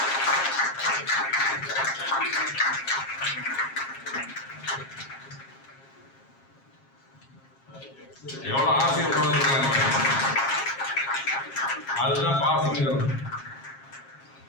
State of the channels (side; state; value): right; late; 7.4 ms